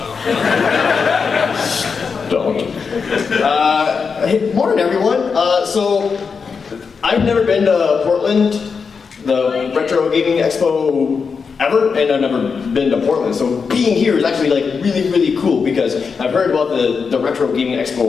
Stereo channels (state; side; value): quieter; right; 5.5 dB